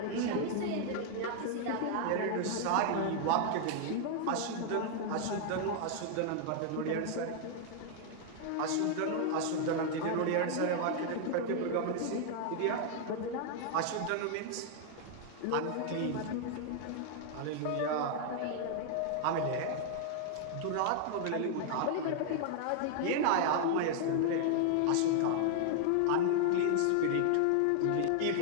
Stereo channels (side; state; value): both; different; correlation 0.00